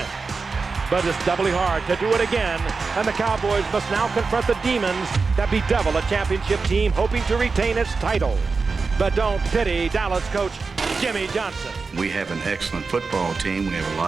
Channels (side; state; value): left; quieter; 4.5 dB